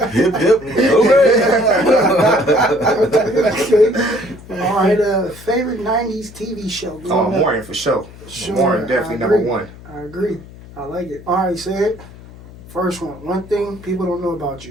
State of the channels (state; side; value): noise; left; hum, 19 dB below the sound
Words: Hip, hip. Okay. All right. Favorite 90s TV show? Oh, Morning for sure. Morning definitely number 1. I agree. I like it. All right, say it. First one. One thing people don't know about